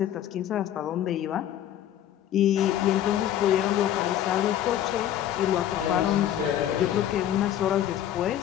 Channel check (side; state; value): right; quieter; 11.3 dB